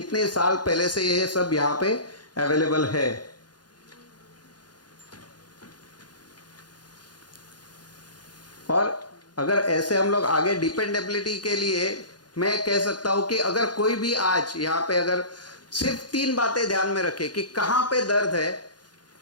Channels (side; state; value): right; late; 0.70 ms